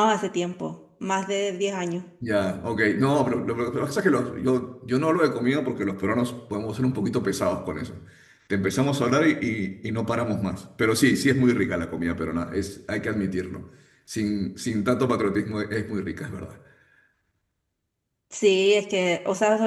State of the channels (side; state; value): both; identical; correlation 1.00